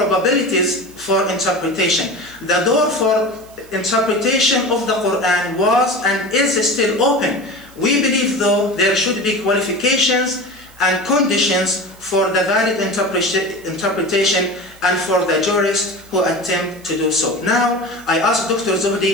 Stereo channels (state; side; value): noise; right; hiss, 25 dB below the sound